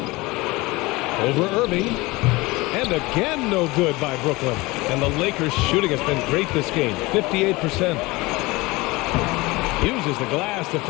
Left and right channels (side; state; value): right; quieter; 22.4 dB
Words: Over Irving. And again, no good by Brooklyn. And the Lakers' shooting has been great this game. 58%. Uses the glass to